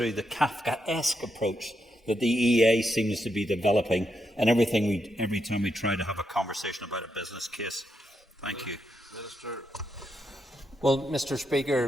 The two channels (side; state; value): both; normal; correlation 0.82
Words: the Kafkaesque approach that the EA seems to be developing and every time we try to have a conversation about a business case? Thank you. Minister. Well, Mr.